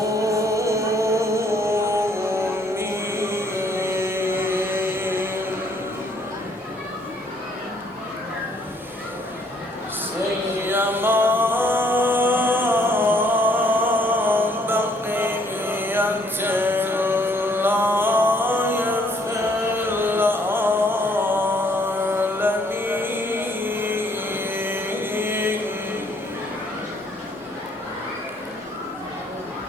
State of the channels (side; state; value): both; normal; correlation 0.65